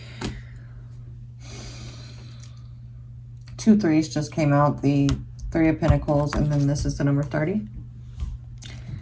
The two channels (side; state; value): both; identical; correlation 1.00